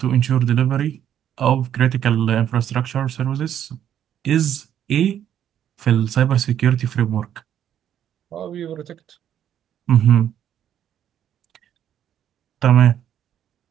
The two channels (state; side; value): quieter; left; 10.1 dB